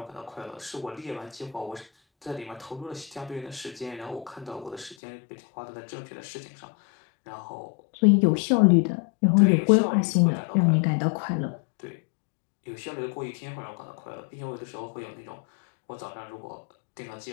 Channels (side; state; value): right; drops out; at 5.0 s